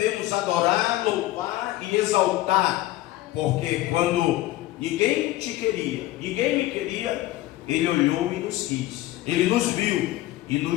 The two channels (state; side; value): quieter; right; 16.3 dB